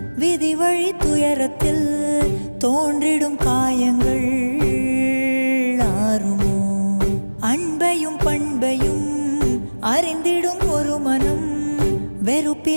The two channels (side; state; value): both; inverted; correlation -1.00